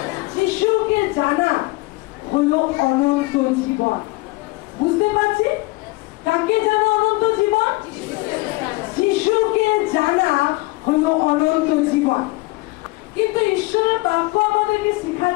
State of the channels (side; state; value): right; quieter; 22.7 dB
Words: যিশুকে জানা হলো অনন্ত জীবন। বুঝতে পারছি? কাকে জানা অনন্ত জীবন? যিশুকে জানা হলো অনন্ত জীবন। কিন্তু ঈশ্বরের বাক্য আমাদেরকে